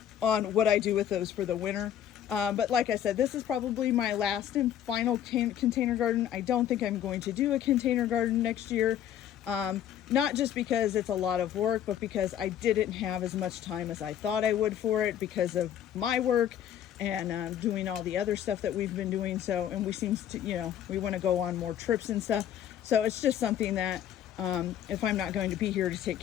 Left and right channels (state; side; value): quieter; right; 10.3 dB